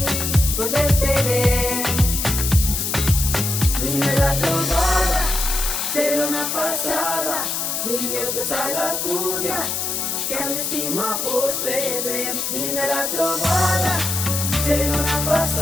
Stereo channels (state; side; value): noise; left; hiss, 1 dB below the sound